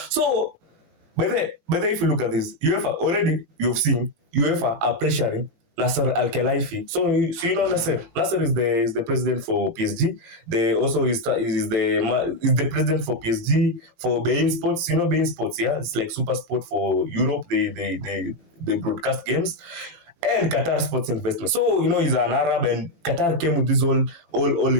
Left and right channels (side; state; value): left; late; 17 ms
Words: So, but then if you look at this, UEFA already, you've seen UEFA are pressuring Nasser Al-Khelaifi. So you know Nasser. Nasser is the president for PSG. They also is the president for PSG for beIN Sports. You know beIN Sports, yeah? It's like super sport for Europe. They broadcast games. And Qatar Sports Investment. So he's an Arab, and Qatar came with this all